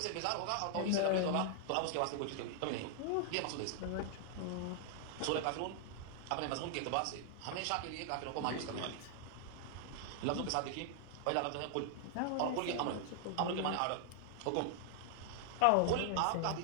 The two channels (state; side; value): different; both; correlation 0.00